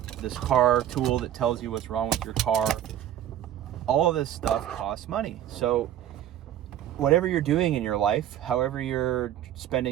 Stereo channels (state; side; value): quieter; left; 11.5 dB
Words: car tool that tells you what's wrong with your car, all of this stuff costs money. So whatever you're doing in your life, however you're